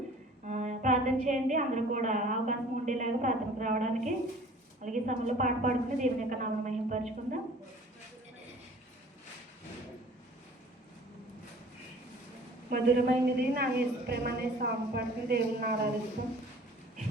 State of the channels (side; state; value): both; normal; correlation 0.49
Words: ప్రార్థన చేయండి, అందరూ కూడా అవకాశం ఉండేలాగా ప్రార్థనకు రావడానికి. అలాగే సమయంలో పాట పాడుకుని దేవుని యొక్క నామం మహిమపరుచుకుందాం. మధురమైనది నా యేసు ప్రేమ అనే సాంగ్ పాడుకుని దేవుని ఆరాధిస్తాం.